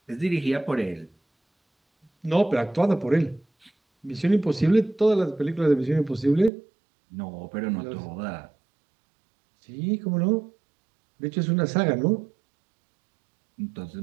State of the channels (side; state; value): left; drops out; at 6.5 s